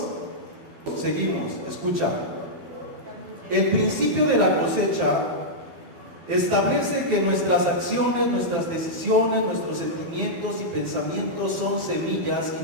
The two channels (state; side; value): late; left; 12 ms